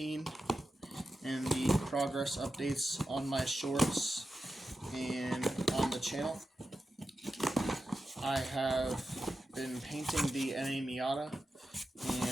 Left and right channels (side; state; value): both; normal; correlation 0.91